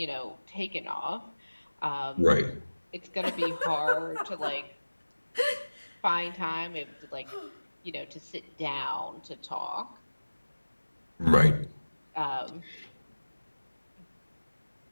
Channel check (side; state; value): both; inverted; correlation -1.00